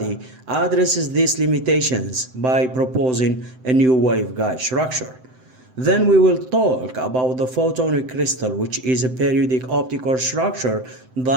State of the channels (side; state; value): left; late; 7.8 ms